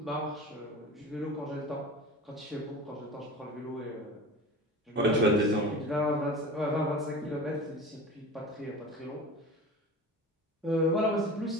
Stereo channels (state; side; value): normal; both; correlation 0.35